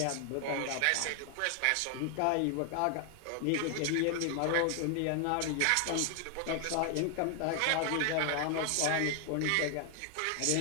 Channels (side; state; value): both; different; correlation 0.00